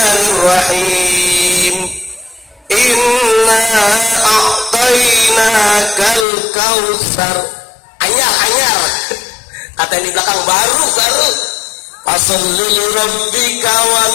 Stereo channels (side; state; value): right; drops out; at 6.2 s